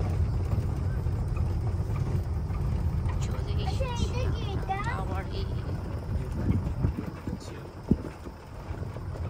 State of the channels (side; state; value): both; identical; correlation 1.00